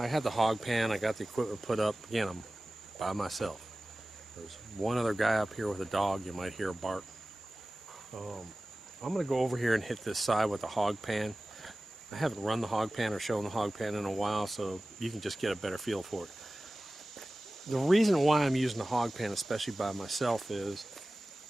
had the hog pan, I got the equipment put up. Again, I'm by myself. There's one other guy up here with a dog. You might hear a bark. I'm going to go over here and hit this side with the hog pan. I haven't run the hog pan or shown the hog pan in a while, so you can just get a better feel for it. The reason why I'm using the hog pan, especially by myself, is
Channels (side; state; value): both; normal; correlation 0.97